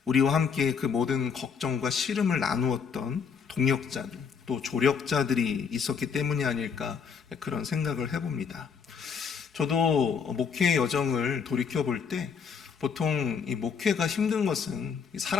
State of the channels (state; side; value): quieter; right; 6.3 dB